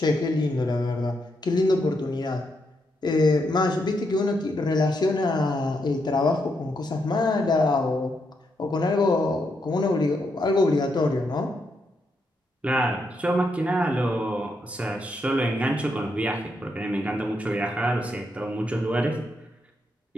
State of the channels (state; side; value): normal; both; correlation 0.80